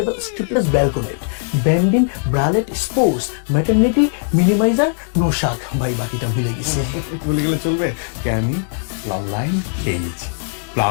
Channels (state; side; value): silent; right; digital silence